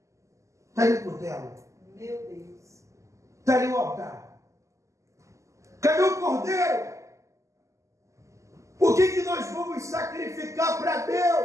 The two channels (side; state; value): left; late; 0.15 ms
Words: está ali o cutelo? Meu Deus. Está ali o altar? Cadê o cordeiro? O que nós vamos sacrificar para